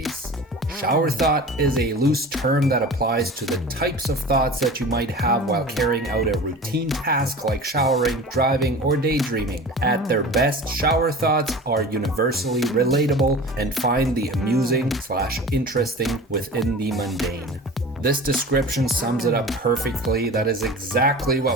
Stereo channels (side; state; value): both; normal; correlation 0.37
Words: Shower thought is a loose term that applies to the types of thoughts that you might have while carrying out a routine task like showering, driving, or daydreaming. At their best, shower thoughts are universally relatable and find the amusing/interesting within the mundane. This description sums it up perfectly. That is exactly